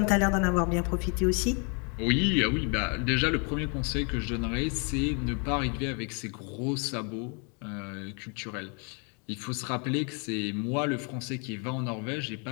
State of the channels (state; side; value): quieter; right; 36.5 dB